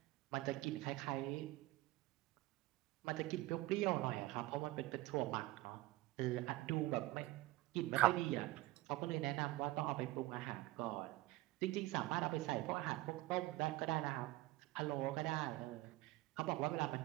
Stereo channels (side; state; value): left; quieter; 18.6 dB